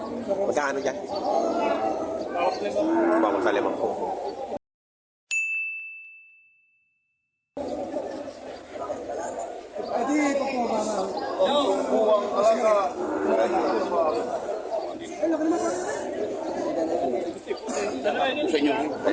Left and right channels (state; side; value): identical; both; correlation 1.00